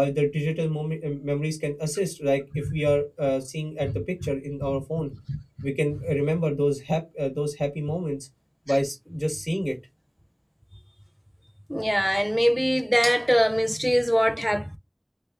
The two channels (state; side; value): identical; both; correlation 1.00